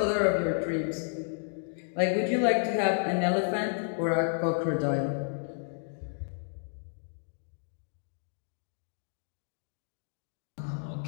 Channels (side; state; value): right; silent; digital silence